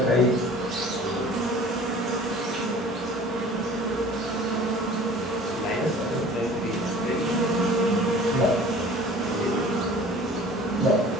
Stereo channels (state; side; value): normal; both; correlation 0.46